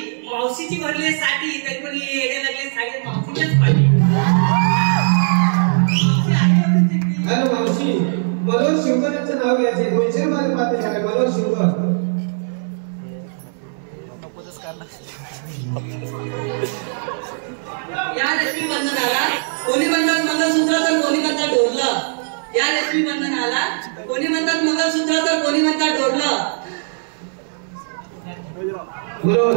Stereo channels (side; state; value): left; silent; 59 dB below the other